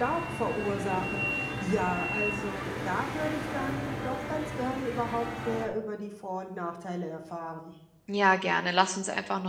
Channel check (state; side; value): identical; both; correlation 1.00